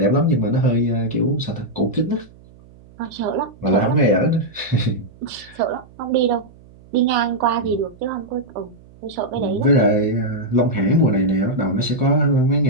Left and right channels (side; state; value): right; noise; hum, 24 dB below the sound